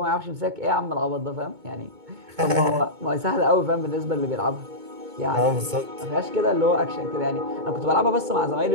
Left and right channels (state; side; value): late; left; 2.2 ms